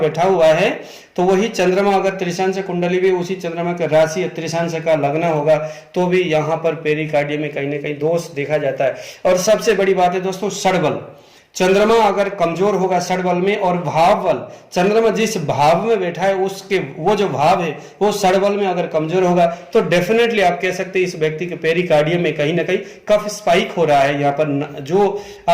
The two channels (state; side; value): identical; both; correlation 1.00